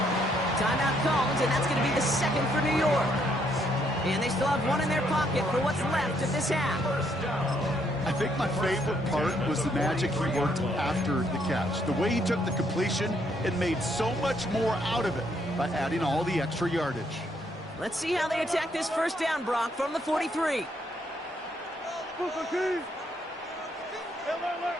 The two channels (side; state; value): both; normal; correlation 0.72